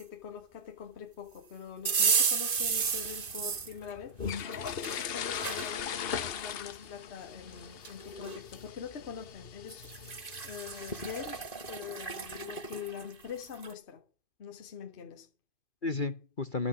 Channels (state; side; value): late; right; 2.5 ms